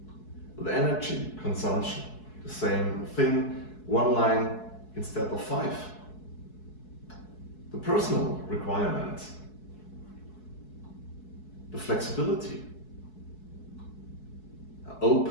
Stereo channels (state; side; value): late; right; 4.7 ms